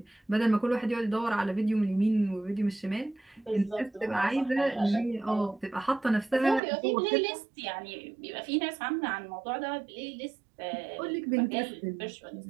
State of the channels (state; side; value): drops out; left; at 6.6 s